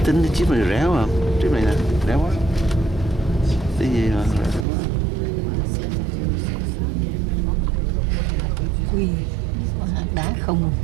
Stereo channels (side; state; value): left; drops out; at 4.7 s